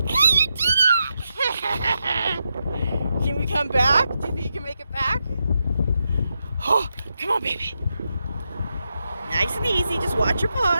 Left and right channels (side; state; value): both; inverted; correlation -0.86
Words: Can we come back? Do you think you can make it back? Oh, come on, baby. Nice and easy. Just watch your